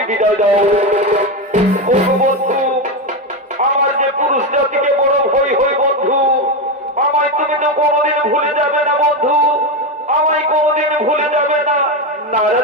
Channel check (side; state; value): both; normal; correlation 0.12